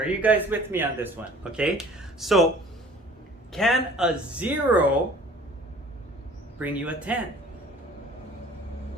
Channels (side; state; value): both; normal; correlation 0.49